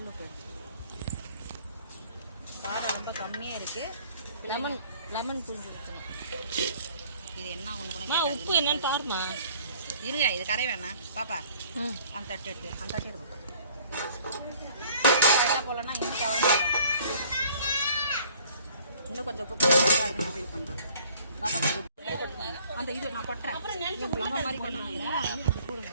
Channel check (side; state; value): both; inverted; correlation -0.55